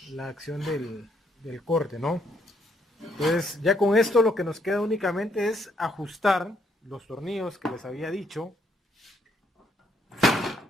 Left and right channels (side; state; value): both; normal; correlation 0.72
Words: acción del corte, ¿no? Entonces ya con esto lo que nos queda únicamente es ajustar los tornillos que les había dicho.